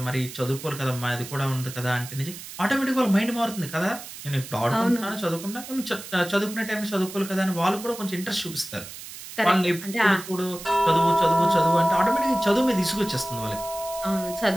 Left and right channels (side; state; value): right; noise; hiss, 13 dB below the sound